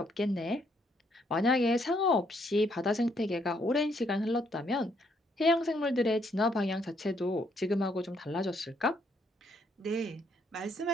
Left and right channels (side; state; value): both; normal; correlation 0.71